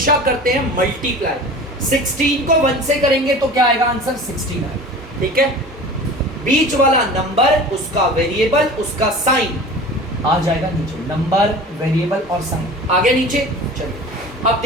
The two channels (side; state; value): both; normal; correlation 0.39